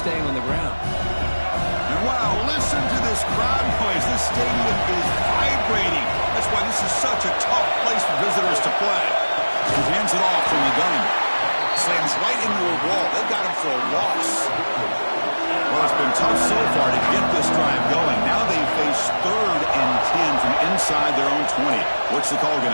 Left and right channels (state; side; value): inverted; both; correlation -1.00